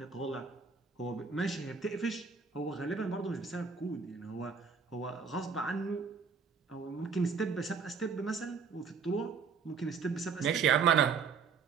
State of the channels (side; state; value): left; quieter; 5.6 dB